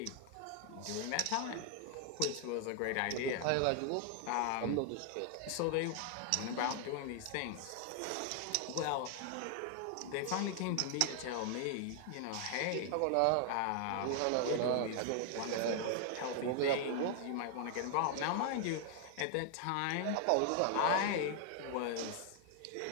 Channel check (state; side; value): different; both; correlation 0.00